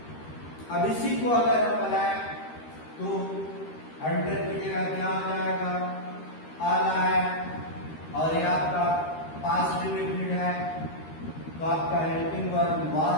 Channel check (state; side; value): late; right; 13 ms